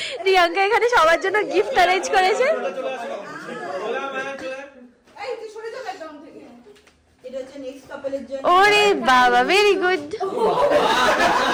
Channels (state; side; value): identical; both; correlation 1.00